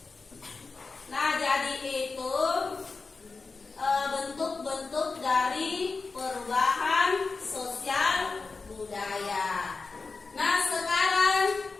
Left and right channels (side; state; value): right; quieter; 4.2 dB